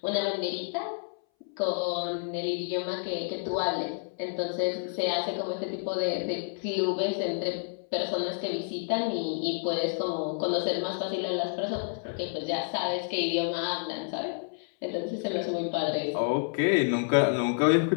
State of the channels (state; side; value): silent; right; 58 dB below the other